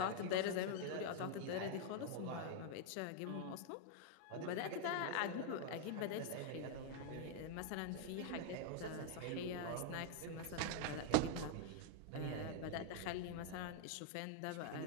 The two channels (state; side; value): different; both; correlation 0.00